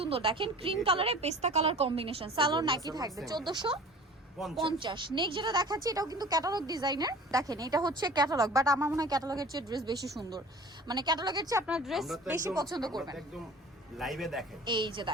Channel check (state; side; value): normal; both; correlation 0.43